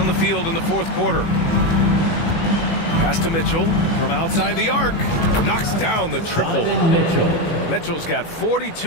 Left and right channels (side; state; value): right; late; 18 ms